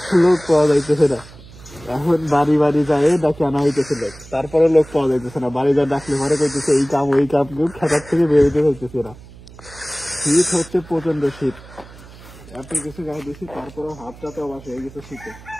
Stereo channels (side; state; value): right; noise; hum, 20 dB below the sound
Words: লোক পাওয়া যাইতেছে না। এখন বাড়ি বাড়ি যায় ডাকে আনা হইতেছিল, তারপরে লোক পাওয়া যাইতেছে না। বাড়ি যা ডাকলে ঘরে কইতেছে এই কাম ওই কাম, কেউ খেতার থেকে বেরোতে হইতেছে না। শীত হচ্ছে প্রচন্ড শীত, এত কিছু গায়ে দিয়েছি তারপরেও হাতটা তো অবাক হয়ে গেছে শীতে।